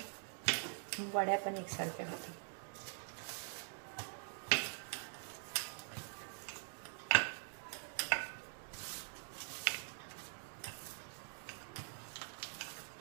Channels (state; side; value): silent; left; digital silence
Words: वड्या पण एकसारख्या होतात.